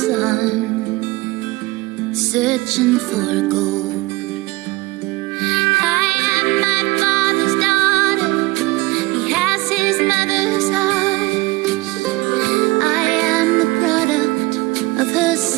searching for gold. His mother's eyes. I am the product of her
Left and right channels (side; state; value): left; quieter; 21.7 dB